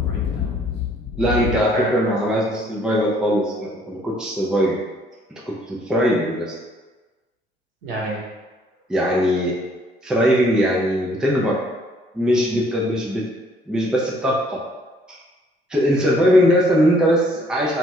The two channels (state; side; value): normal; both; correlation 0.63